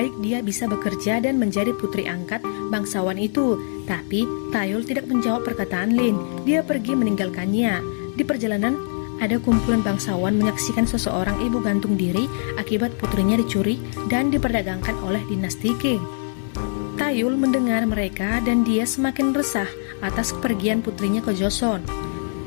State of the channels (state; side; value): silent; right; 61 dB below the other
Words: dia bisa bekerja dan menjadi putri angkat bangsawan itu. Tapi Taeyol tidak menjawab perkataan Lin. Dia pergi meninggalkannya. Di perjalanan, ada kumpulan bangsawan menyaksikan seseorang ibu gantung diri akibat putrinya dicuri dan diperdagangkan oleh dinasti Qing. Taeyol mendengar mereka dan dia semakin resah atas kepergian putrinya ke Joseon.